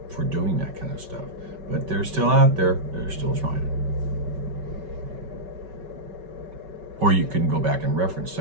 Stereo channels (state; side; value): late; left; 5.3 ms